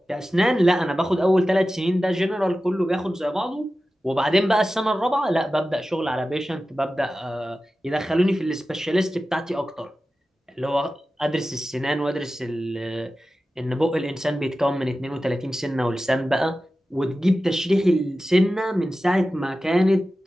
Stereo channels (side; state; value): both; normal; correlation 0.94